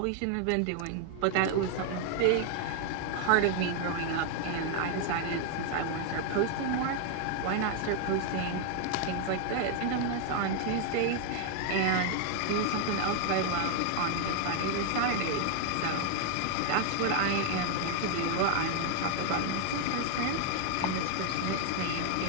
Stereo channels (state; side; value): different; both; correlation 0.00